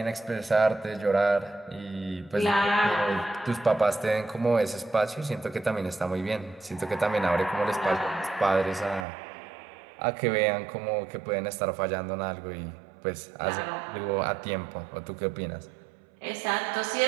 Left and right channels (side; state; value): left; drops out; at 9.1 s